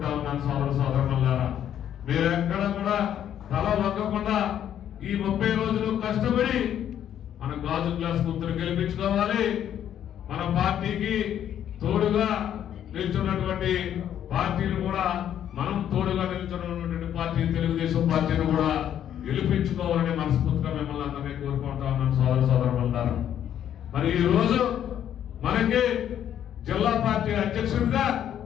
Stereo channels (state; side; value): quieter; right; 10.2 dB